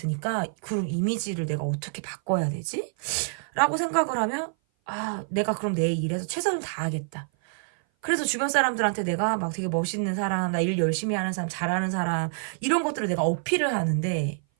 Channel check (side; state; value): left; silent; 57 dB below the other